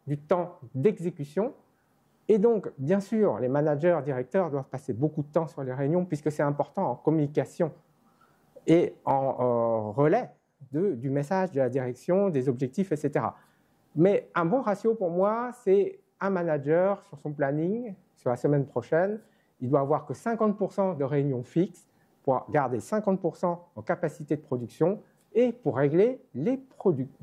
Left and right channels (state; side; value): identical; both; correlation 1.00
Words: du temps d'exécution. Et donc, bien sûr, les managers, directeurs doivent passer beaucoup de temps sur les réunions puisque c'est important en communication et en relais du message, de la direction, des objectifs, etc. Mais un bon ratio pour moi, c'est un manager sur son planning, sur la semaine prochaine, il doit avoir que 50% de réunions fixes pour garder 50% en capacité de production et pour régler les